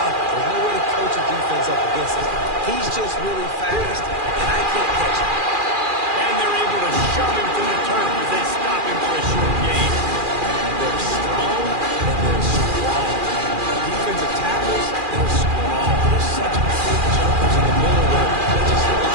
it. There's no way to coach a defense up against it. He's just really fast, and I can't catch him. And they're able to shove him to the turf as they stop him for a short gain. They're strong, and they're strong. Defensive tackles, they're strong. They're such big jumpers in the middle where they just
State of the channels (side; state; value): left; late; 2.4 ms